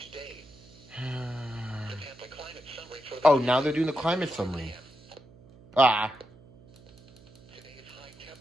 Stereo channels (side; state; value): right; noise; hum, 24 dB below the sound